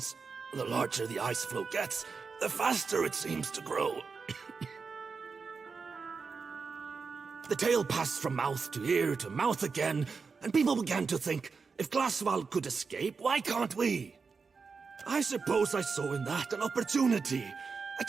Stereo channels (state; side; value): quieter; left; 5.0 dB